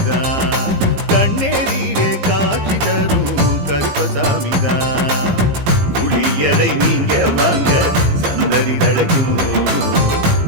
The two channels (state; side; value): late; left; 15 ms